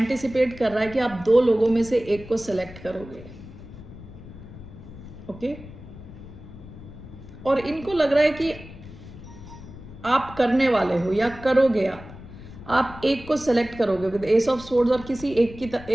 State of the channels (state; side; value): noise; left; rumble, 16 dB below the sound